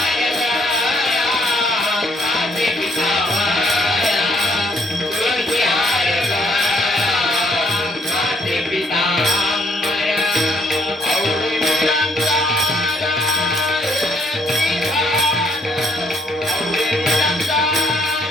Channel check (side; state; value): both; normal; correlation 0.68